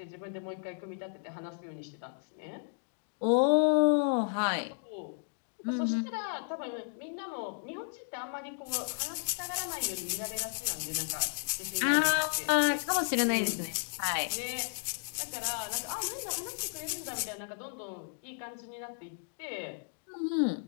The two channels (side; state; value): right; silent; digital silence